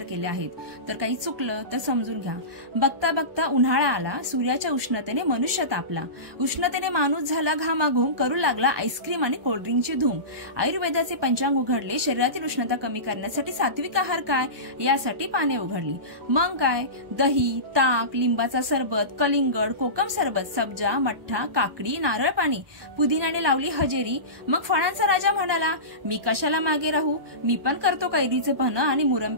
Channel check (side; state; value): left; late; 1.2 ms